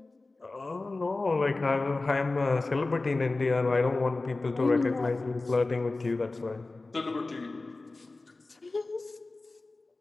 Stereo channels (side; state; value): right; quieter; 3.3 dB